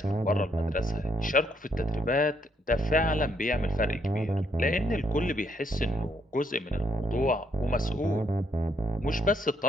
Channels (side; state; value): both; normal; correlation 0.73